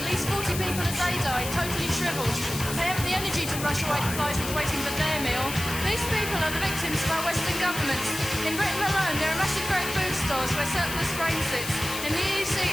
least 40 people a day die, totally shriveled. They haven't the energy to brush away the flies with waiting for their meal. These people are the victims of our Western governments. In Britain alone, there are massive great food stores where surplus grain sits. In the EC,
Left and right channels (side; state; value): left; noise; hiss, 7 dB below the sound